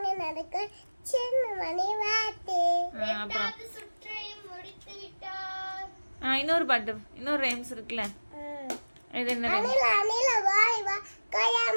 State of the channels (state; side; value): inverted; both; correlation -1.00